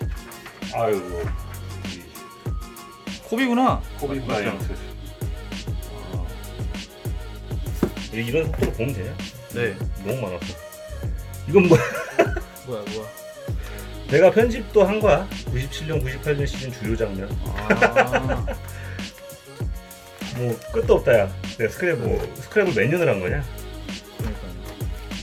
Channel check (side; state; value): both; identical; correlation 1.00